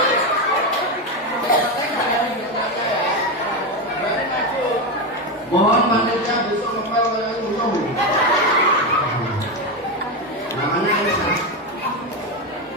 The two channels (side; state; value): both; normal; correlation 0.12